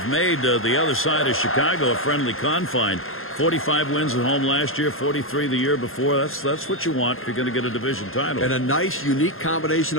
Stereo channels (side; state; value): right; late; 0.61 ms